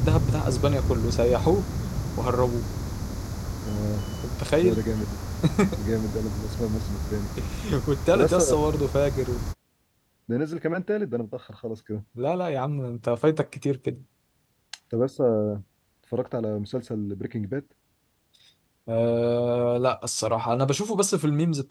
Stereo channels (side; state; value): both; identical; correlation 1.00